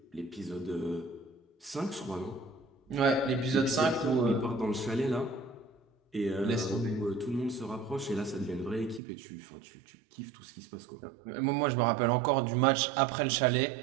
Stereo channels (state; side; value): drops out; left; at 9.0 s